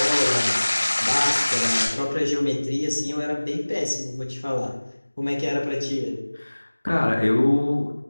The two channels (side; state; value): both; inverted; correlation -1.00